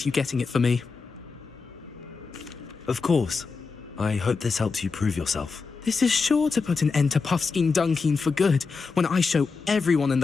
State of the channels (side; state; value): right; quieter; 4.7 dB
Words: you getting it for me. Of course. I hope this helps you prove yourself. This is sure to put an end to Puffskein Dunkeen for good when I show everyone in